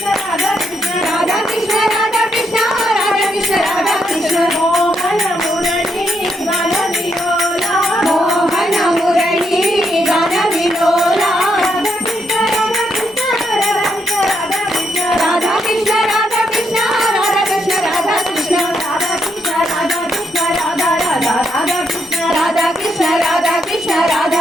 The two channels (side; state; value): both; normal; correlation 0.78